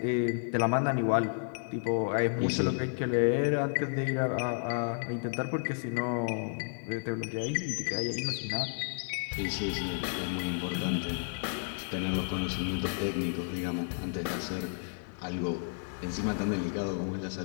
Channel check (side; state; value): right; silent; digital silence